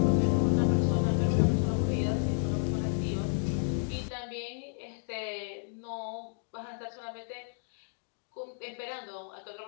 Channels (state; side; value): silent; right; digital silence